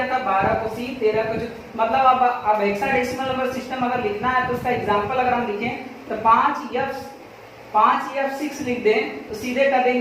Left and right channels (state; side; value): identical; both; correlation 1.00